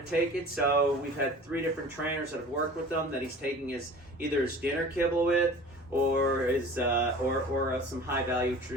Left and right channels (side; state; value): both; normal; correlation 0.42